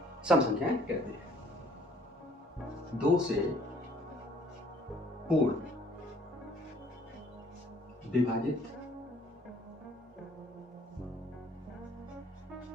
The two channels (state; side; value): normal; both; correlation 0.58